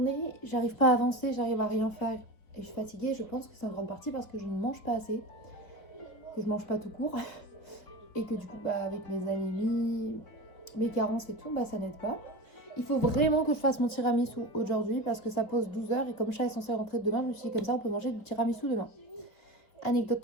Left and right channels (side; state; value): right; late; 3.8 ms